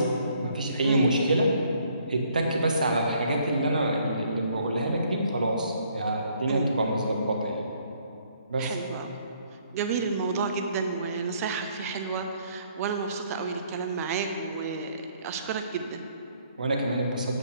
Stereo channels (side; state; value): both; inverted; correlation -0.65